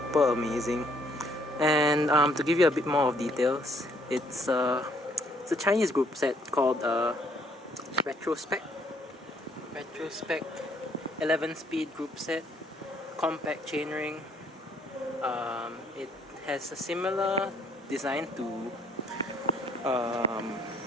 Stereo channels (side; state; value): both; normal; correlation 0.65